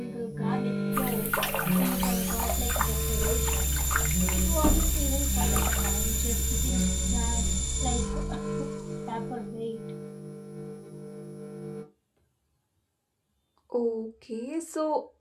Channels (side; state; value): both; identical; correlation 1.00